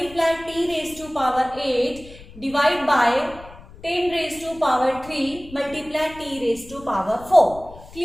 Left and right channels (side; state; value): left; noise; rumble, 19 dB below the sound